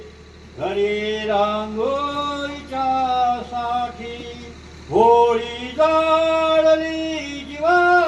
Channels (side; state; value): both; identical; correlation 1.00